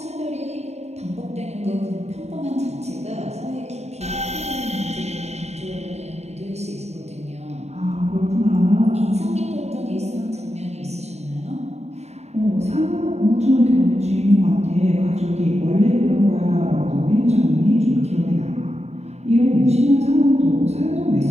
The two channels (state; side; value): late; left; 0.32 ms